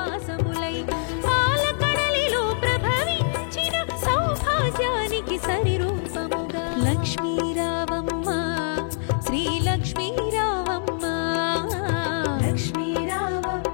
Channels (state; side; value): silent; right; digital silence